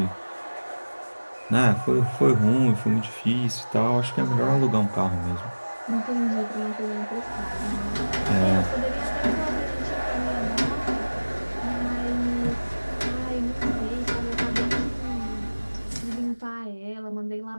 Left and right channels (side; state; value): both; inverted; correlation -1.00